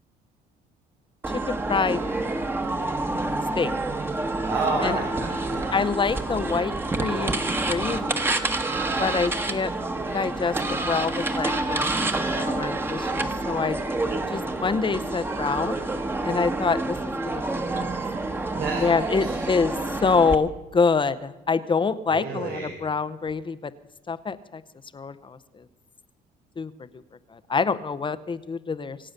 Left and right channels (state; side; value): normal; both; correlation 0.56